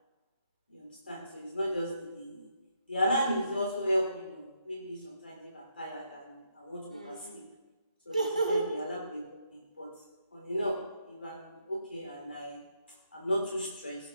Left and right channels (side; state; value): both; inverted; correlation -0.77